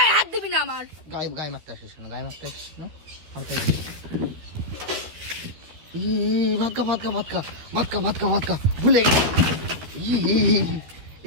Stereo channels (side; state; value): left; late; 13 ms